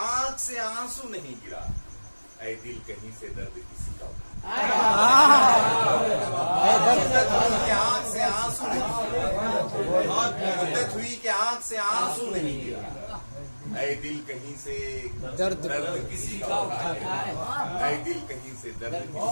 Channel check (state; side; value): inverted; both; correlation -1.00